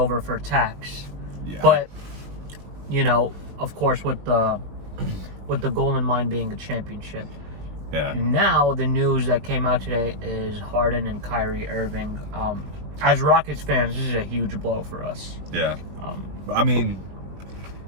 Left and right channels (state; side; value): late; left; 20 ms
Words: for tax. Yeah. But of course, with the goal in mind being a championship. Yeah. Now the news that came out today is Harden and Kyrie Irving. As Rockets fans, this is a huge blow for us. Yeah. I mean,